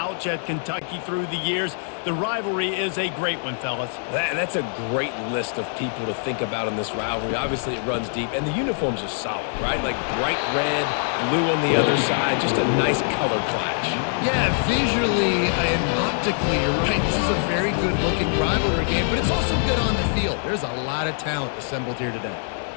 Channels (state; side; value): silent; right; 61 dB below the other